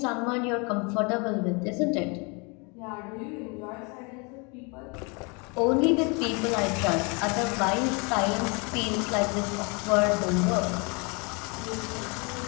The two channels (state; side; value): quieter; right; 31.2 dB